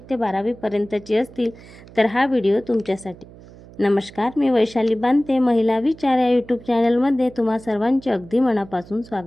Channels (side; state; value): right; noise; hum, 20 dB below the sound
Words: ते 12वी पर्यंतची असतील तर हा व्हिडिओ तुमच्यासाठी। नमस्कार, मी वैशाली बांते, महिला विचार या यूट्यूब चॅनलमध्ये तुम्हा सर्वांचे अगदी मनापासून